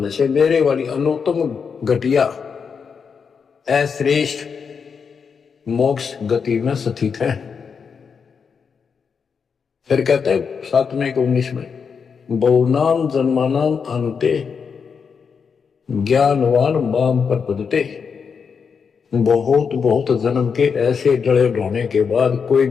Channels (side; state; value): right; quieter; 6.1 dB